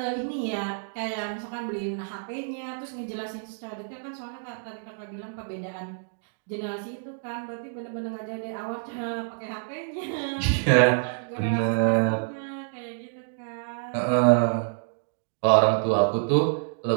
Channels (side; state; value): left; silent; digital silence